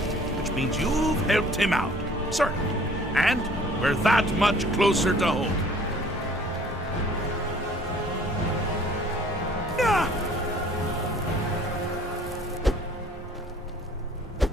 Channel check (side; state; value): both; normal; correlation 0.54